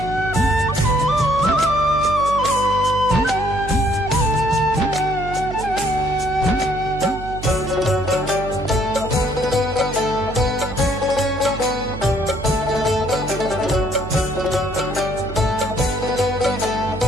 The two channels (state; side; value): noise; right; hum, 10 dB below the sound